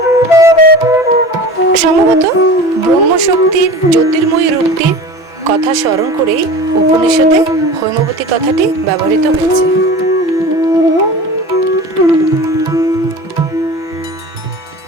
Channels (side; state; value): right; late; 5.9 ms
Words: সম্ভবত ব্রহ্মশক্তির জ্যোতির্ময়ী রূপটির কথা স্মরণ করেই উপনিষদে হৈমবতী কথাটি ব্যবহৃত হয়েছে।